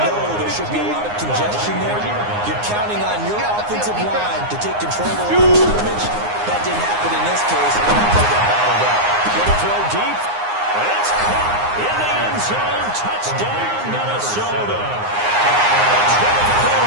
there should be a lot of congestion there. You're counting on your offensive line to take control of the line of scrimmage. That didn't happen in this case. And the play got battled up. Going to throw deep. It's caught in the end zone. Touchdown, Minnesota.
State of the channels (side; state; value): left; late; 9.7 ms